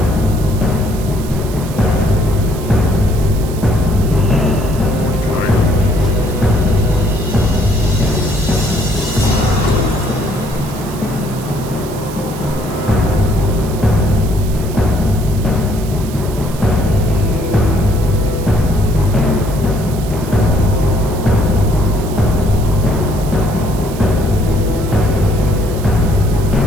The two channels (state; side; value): noise; right; hiss, 16 dB below the sound